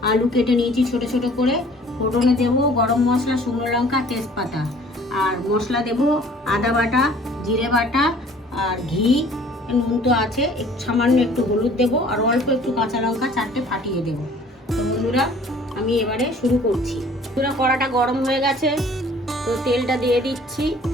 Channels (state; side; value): normal; both; correlation 0.53